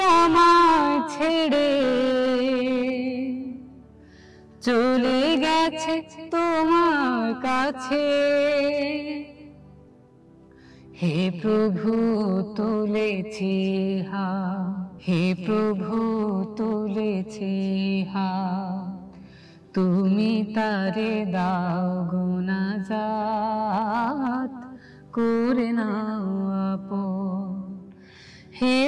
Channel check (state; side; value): identical; both; correlation 1.00